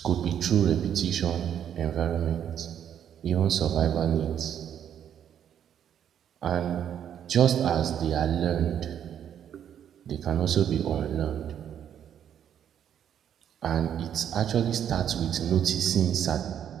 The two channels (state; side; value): quieter; left; 9.4 dB